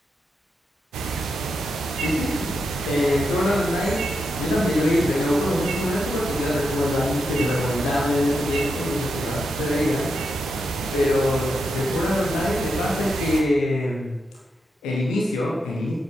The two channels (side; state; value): both; normal; correlation 0.85